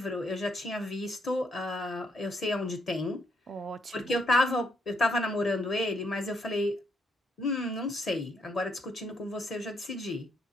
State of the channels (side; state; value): both; normal; correlation 0.73